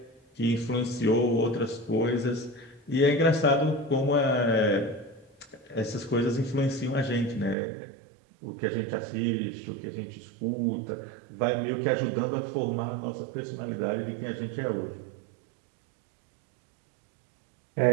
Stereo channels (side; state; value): left; drops out; at 7.6 s